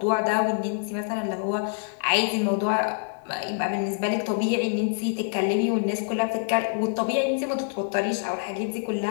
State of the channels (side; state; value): right; silent; digital silence